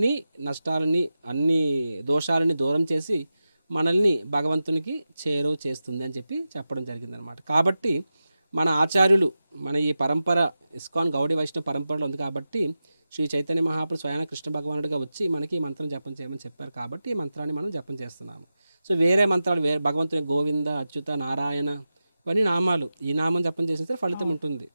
నష్టాలని, అన్ని దోషాలని దూరం చేసి మనల్ని భగవంతునికి చేరువ చేస్తుంది అని చెప్పి చెప్పడం జరిగింది అనమాట. కాబట్టి మన ఆచార్యులు, మన ఈ పరంపర ఇస్కాన్ గౌడీ వైష్ణవ పరంపరలో ఉంది కాబట్టి శ్రీ చైతన్య మహాప్రభు స్వయాన కృష్ణ భగవానుడిగా వచ్చి మనకి ఈ మంత్రం జపం చేయమని చెప్పారు. కాబట్టి ఈ మంత్రాన్ని మనం జపం చేస్తున్నాము. సో వేరే మంత్రాలు, వేరే భగవంతుని గోవింద, అచ్యుత, నారాయణ ఇవన్నీ నామాలు, ఈ నామం జపం చేస్తే ఫలితం ఉంటుంది.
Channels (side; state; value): both; inverted; correlation -0.92